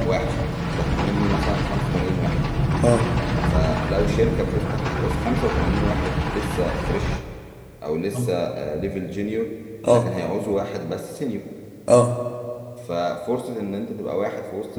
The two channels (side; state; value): both; identical; correlation 1.00